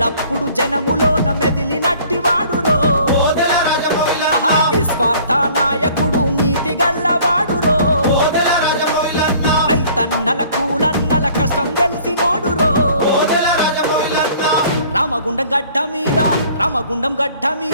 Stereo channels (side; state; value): both; inverted; correlation -0.53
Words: జనములోన మెదిలినట్టి వాడురో నిస్వార్థ నాయకుడు నీతి గల్లవాడురో రైతన్నల కూలన్నల కష్టం తెలిసినోడురో రామగుండం గడ్డ మీద రామగుండం గడ్డ